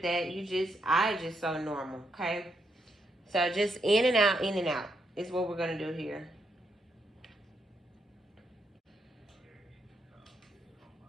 I just sew normal, okay? So just in and out is what we're going to do here.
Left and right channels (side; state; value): both; normal; correlation 0.79